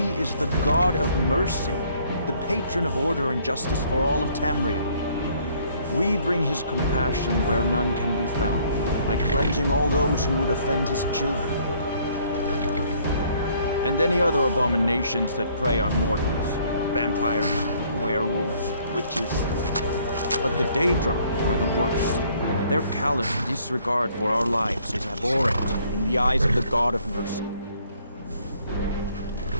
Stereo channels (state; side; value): inverted; both; correlation -0.62